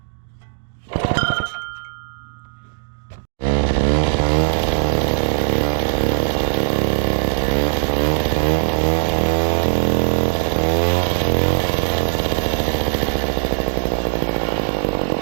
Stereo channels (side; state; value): left; silent; digital silence